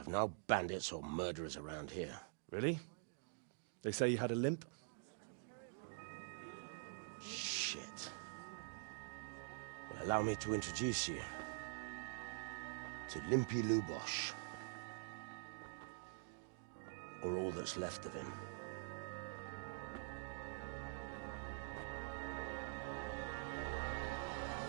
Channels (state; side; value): silent; left; digital silence